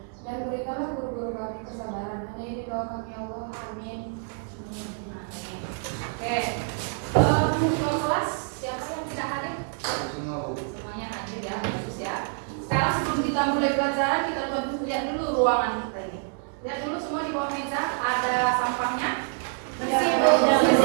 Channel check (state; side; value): silent; left; 58 dB below the other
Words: Dan berikanlah guru-guru kami kesabaran. Hanya ini doa kami ya Allah. Amin. Oke. Untuk kelas, siapa yang tidak hadir? Semuanya hadir ya, bagus ya. Sekarang sebelum kita mulai pelajaran, kita lihat dulu ruangan kita ini. Lihat dulu semua di bawah meja ada sampahnya. Bersih